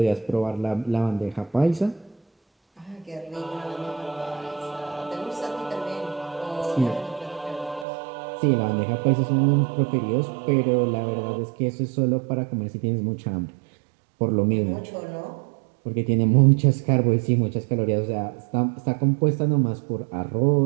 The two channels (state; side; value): drops out; left; at 7.9 s